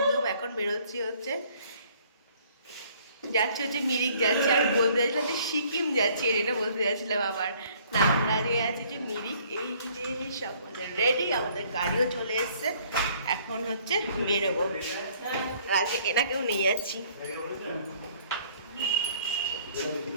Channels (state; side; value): inverted; both; correlation -0.60